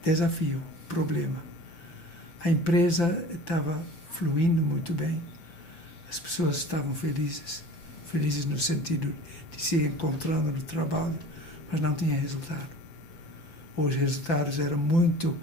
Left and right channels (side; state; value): right; late; 5.9 ms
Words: desafio, problema. A empresa estava fluindo muito bem, as pessoas estavam felizes no sentido de se encontrando no trabalho, mas não tinha resultado. Os resultados eram muito